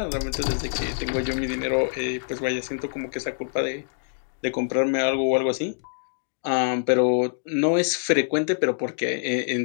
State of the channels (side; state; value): right; silent; digital silence